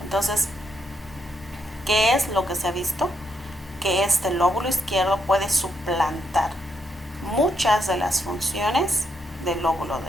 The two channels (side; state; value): both; normal; correlation 0.78